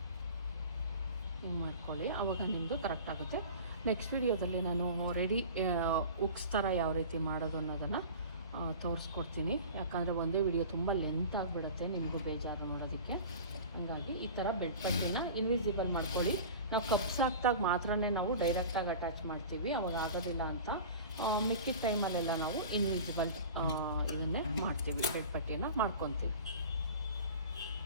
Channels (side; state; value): both; inverted; correlation -0.37